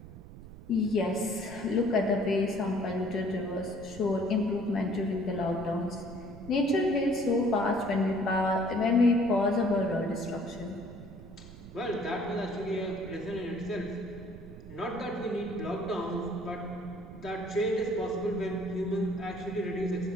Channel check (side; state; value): right; noise; rumble, 15 dB below the sound